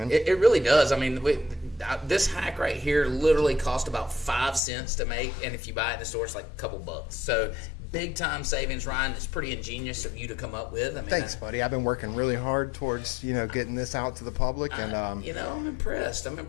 It really does. I mean, this hack right here literally cost about 5 cents to make, and if you buy it in the store, it's like a couple bucks. So big time savings, Ryan. It's pretty ingenious of you to come up with. I mean, thanks, buddy. I've been working really hard towards getting this out to the public, and I'm impressed.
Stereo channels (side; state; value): right; drops out; at 4.6 s